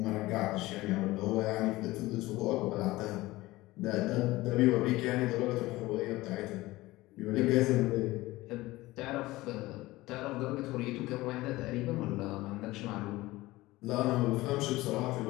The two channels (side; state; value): right; quieter; 18.9 dB